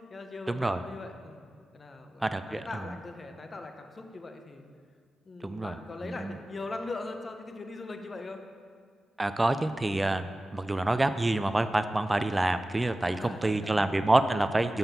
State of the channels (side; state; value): both; normal; correlation 0.96